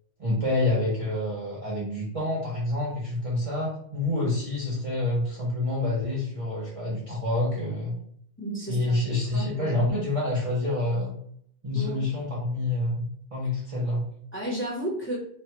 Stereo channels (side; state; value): both; normal; correlation 0.18